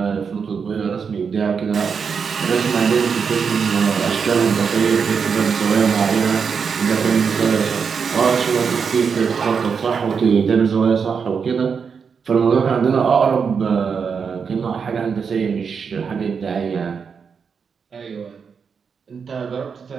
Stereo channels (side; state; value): left; quieter; 6.1 dB